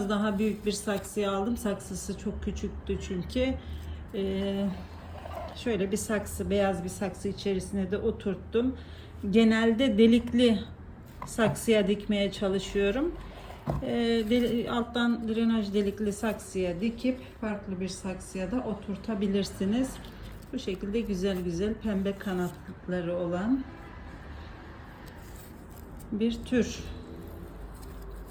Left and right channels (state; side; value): identical; both; correlation 1.00